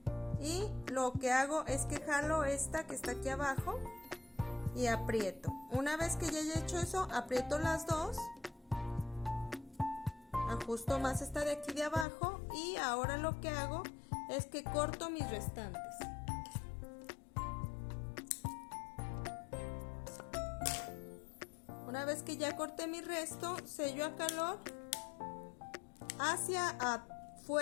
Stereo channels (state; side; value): drops out; right; at 12.1 s